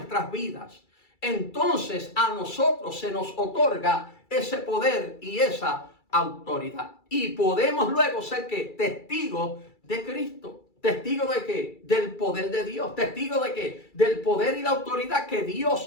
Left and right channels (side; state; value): right; late; 2.3 ms